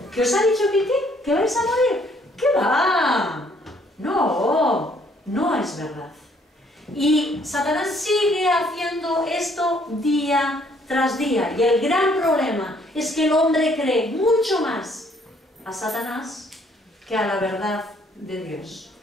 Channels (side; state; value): both; normal; correlation 0.64